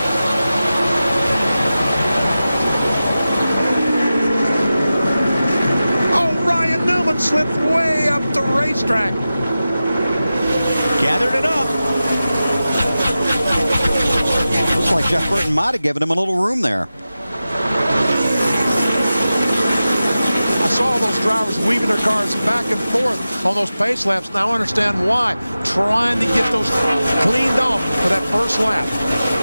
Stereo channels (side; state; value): both; inverted; correlation -0.93